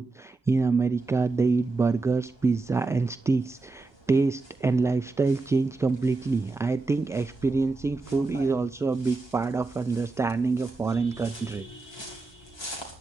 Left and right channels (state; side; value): quieter; left; 3.7 dB